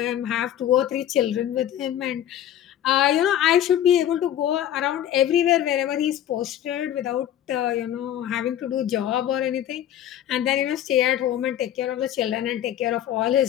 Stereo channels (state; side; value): quieter; right; 11.2 dB